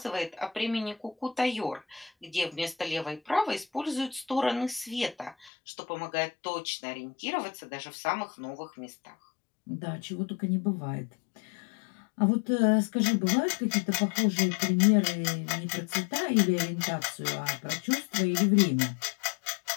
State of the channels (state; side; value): drops out; right; at 5.5 s